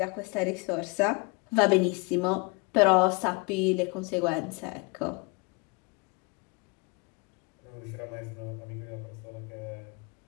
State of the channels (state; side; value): quieter; right; 28.3 dB